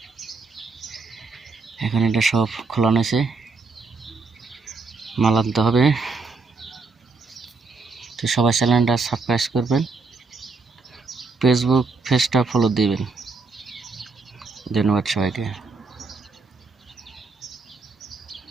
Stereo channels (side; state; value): left; quieter; 4.3 dB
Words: এখন এটা সব খোলানো হয়েছে, মাল আনতে হবে। তো সবাই চ্যানেলটা সাবস্ক্রাইব করবেন, ফেসবুক পেজটা ফলো দিবেন। ধন্যবাদ সবাইকে।